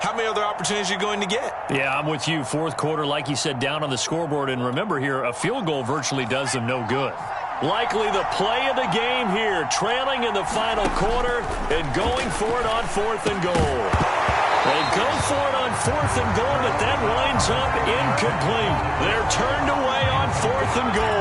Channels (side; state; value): both; identical; correlation 1.00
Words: many other opportunities are you going to get? Yeah, I'm with you. 4th quarter, like you said, down on the scoreboard. And remember here, a field goal virtually does them no good. Likely the play of the game here, trailing in the final quarter and going for it on 4th and goal. They go for it on 4th and goal, but that winds up incomplete. They're turned away on 4th and